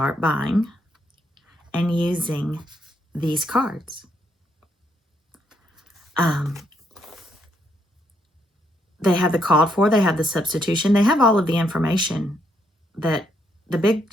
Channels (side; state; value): both; normal; correlation 0.75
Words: buying and using these cards. They have the called for, they have the substitution, they have all of the information that the big